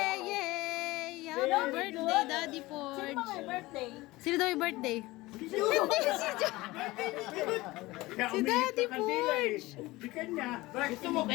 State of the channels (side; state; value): right; quieter; 20.0 dB